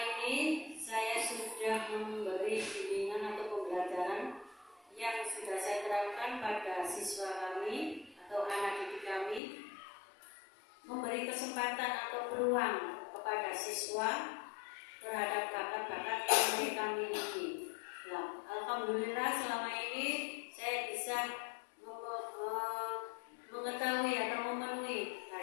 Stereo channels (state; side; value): drops out; right; at 9.4 s